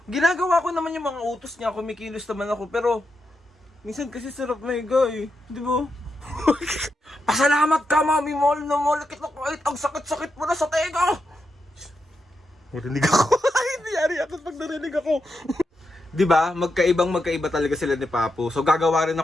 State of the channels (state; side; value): normal; both; correlation 0.85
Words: ginagawa ko naman yung mga utos niya, kumikilos naman ako, pero minsan kasi sarap maiga eh, di ba? Pasalamat ka mami, mall na mall kita kahit ang sakit-sakit mo na sa tega. Narinig ako. Hindi yari ako pag narinig ako. Diba? Magkaiba talaga sila ni Papo. So gagawa rin